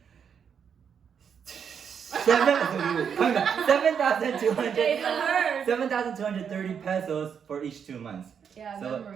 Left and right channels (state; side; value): quieter; left; 7.3 dB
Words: 7,230 pesos for each 2 months.